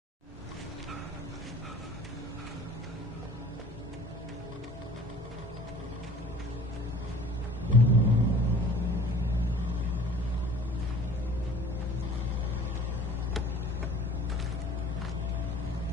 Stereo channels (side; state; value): both; normal; correlation 0.49